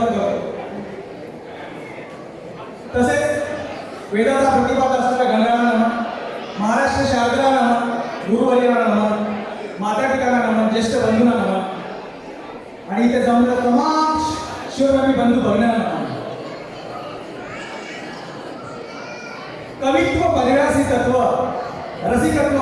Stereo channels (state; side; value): identical; both; correlation 1.00